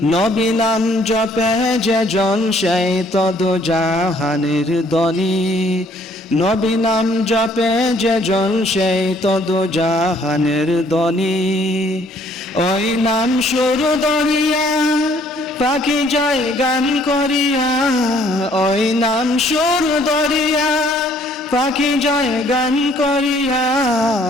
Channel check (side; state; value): both; normal; correlation 0.62